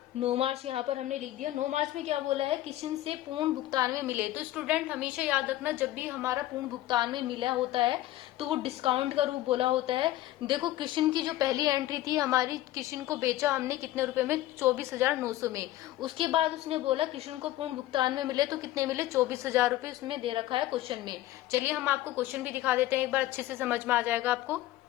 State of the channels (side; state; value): right; quieter; 15.3 dB